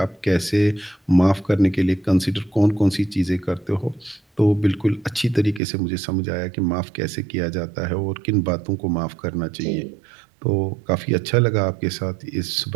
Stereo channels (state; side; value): drops out; left; at 5.6 s